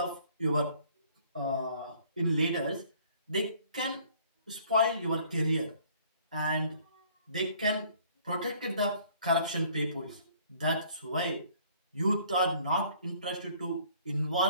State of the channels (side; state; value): both; inverted; correlation -0.58